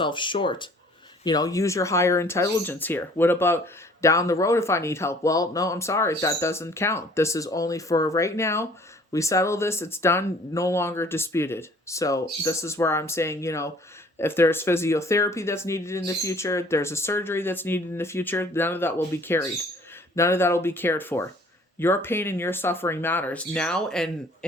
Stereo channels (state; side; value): normal; both; correlation 0.54